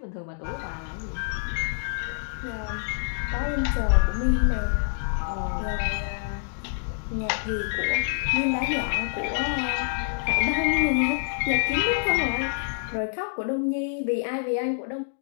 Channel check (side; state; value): right; silent; digital silence